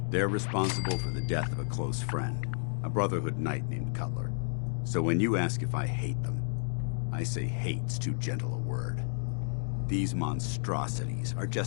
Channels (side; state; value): right; silent; 57 dB below the other